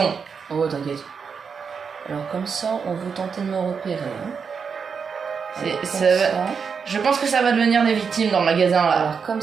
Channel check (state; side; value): quieter; left; 6.0 dB